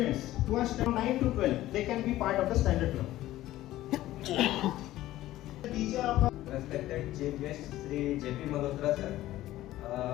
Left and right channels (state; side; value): quieter; right; 15.2 dB